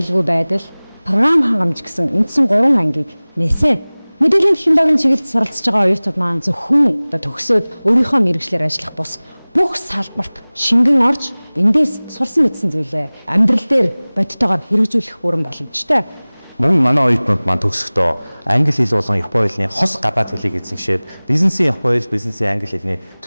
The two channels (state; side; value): inverted; both; correlation -1.00